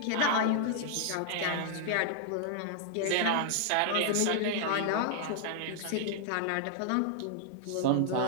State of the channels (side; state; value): both; different; correlation -0.01